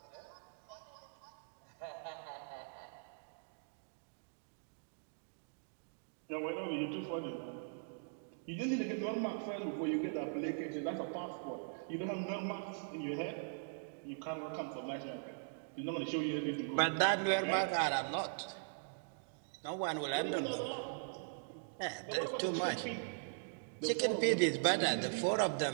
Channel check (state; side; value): silent; left; digital silence